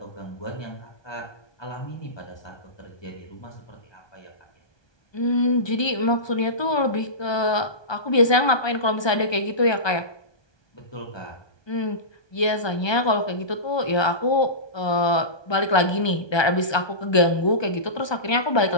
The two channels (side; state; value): right; late; 1.2 ms